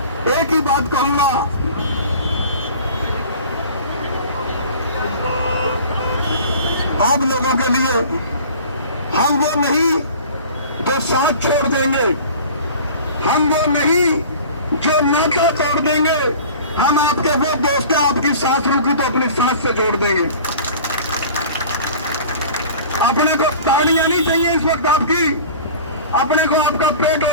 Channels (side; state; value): both; inverted; correlation -0.42